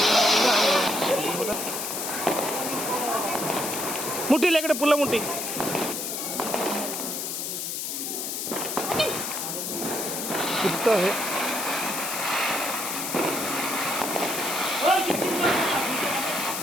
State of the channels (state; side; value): noise; left; hiss, 3 dB below the sound